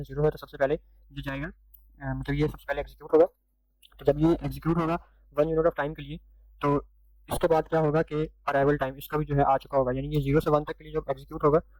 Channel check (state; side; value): identical; both; correlation 1.00